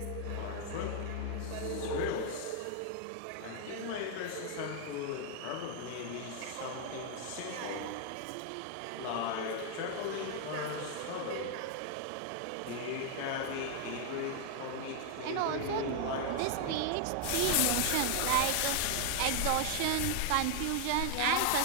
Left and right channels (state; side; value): different; both; correlation 0.00